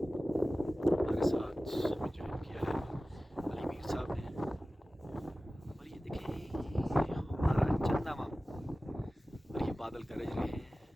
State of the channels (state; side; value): normal; both; correlation 0.96